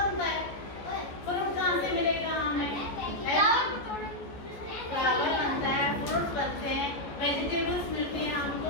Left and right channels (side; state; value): right; late; 14 ms